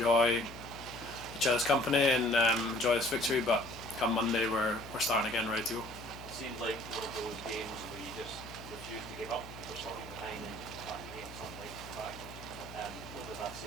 each other's company and enjoy this victory. But come Monday, we're starting again, ready to go. It seemed like one of those games where you just refused to give up. You were starting behind and back again, something like back. What does that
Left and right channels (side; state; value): left; noise; hum, 15 dB below the sound